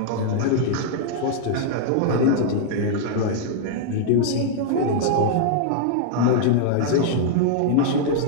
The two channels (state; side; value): different; both; correlation -0.01